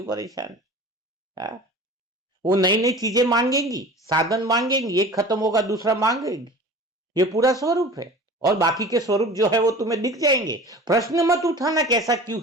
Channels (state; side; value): normal; both; correlation 0.39